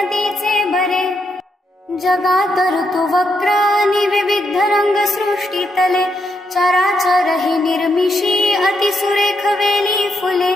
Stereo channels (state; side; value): normal; both; correlation 0.79